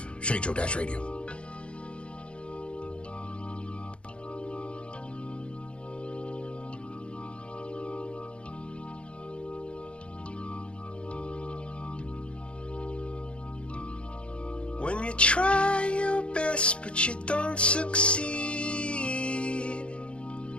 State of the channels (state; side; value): late; right; 0.058 ms